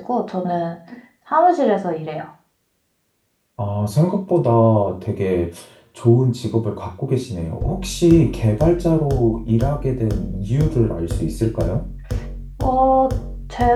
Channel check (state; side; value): identical; both; correlation 1.00